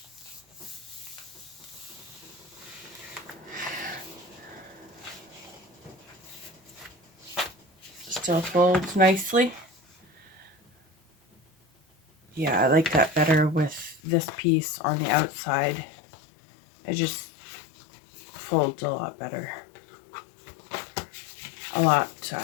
Still folds nicely. Yeah, I like that better with this piece on the outside. It just folds a lot better. A lot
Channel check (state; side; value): drops out; right; at 14.0 s